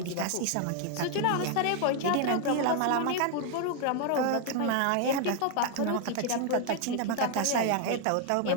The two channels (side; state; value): both; different; correlation 0.00